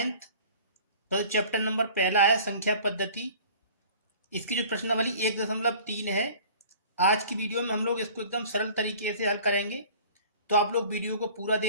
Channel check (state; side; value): inverted; both; correlation -0.46